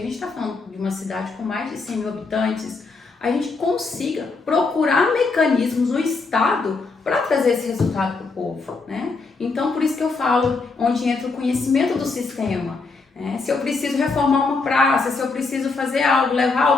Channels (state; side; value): quieter; right; 4.1 dB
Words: está falando de uma cidade com mais de 100 mil habitantes, a gente consiga procurar mecanismos no Estado para trazer esse resultado para o povo, né? Então, por isso que eu falo, onde entra o conhecimento do sistema. Né? Se eu preciso reformar uma praça, se eu preciso fazer algo, levar